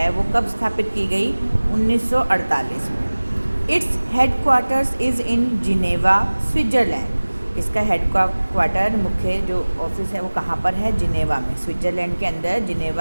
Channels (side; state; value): both; inverted; correlation -1.00